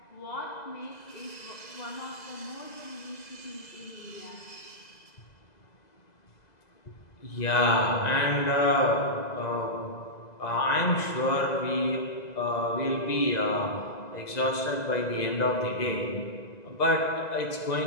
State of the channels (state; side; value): late; right; 2.0 ms